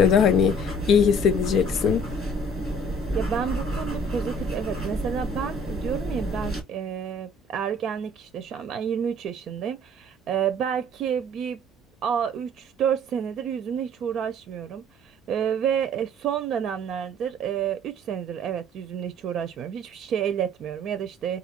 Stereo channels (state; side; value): normal; both; correlation 0.54